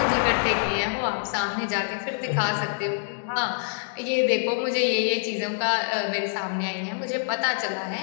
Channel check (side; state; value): right; silent; digital silence